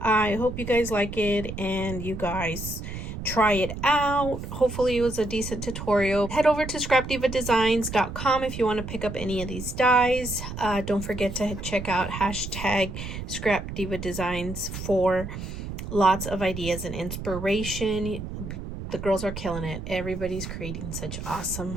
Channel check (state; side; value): noise; right; rumble, 8 dB below the sound